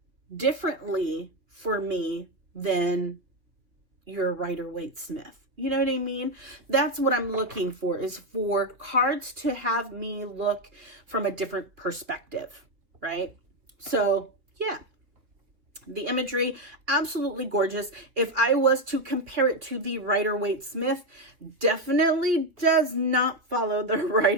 differently for me than your Rider-Waite-Smith? You know what I mean? That's what I'm looking for, is for cards to have me look from a different perspective, right? So yeah, the imagery, absolutely gorgeous. If I was to compare it to the Rider-Waite-Smith, definitely does not follow the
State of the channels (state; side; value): late; left; 3.0 ms